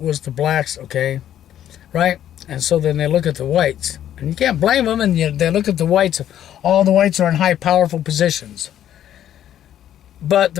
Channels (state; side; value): quieter; right; 11.1 dB